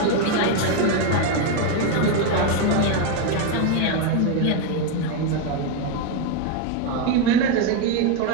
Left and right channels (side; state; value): both; different; correlation 0.02